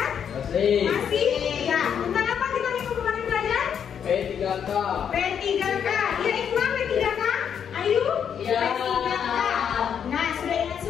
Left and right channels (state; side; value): quieter; right; 8.0 dB